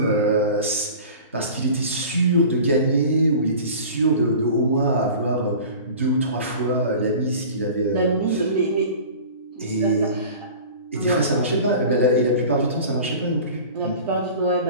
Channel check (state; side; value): inverted; both; correlation -0.39